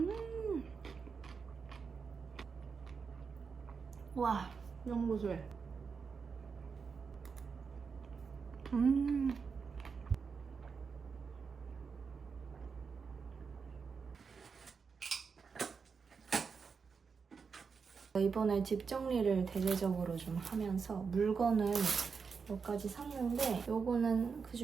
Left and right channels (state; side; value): quieter; left; 5.5 dB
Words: 와, 너무 고소해. 이번에 집 정리를 대대적으로 좀 하면서 물건을 몇 가지 샀는데 요거는 그